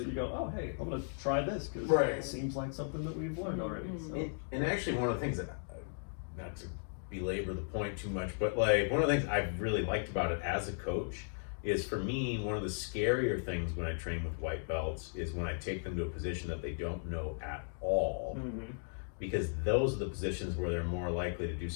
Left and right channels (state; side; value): silent; right; digital silence